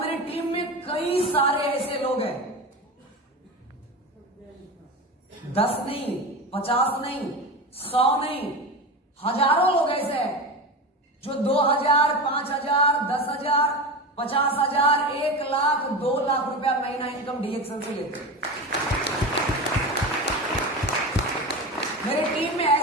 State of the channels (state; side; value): normal; both; correlation 0.25